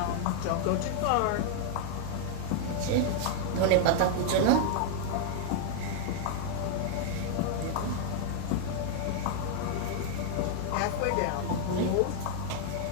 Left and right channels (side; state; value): both; different; correlation 0.00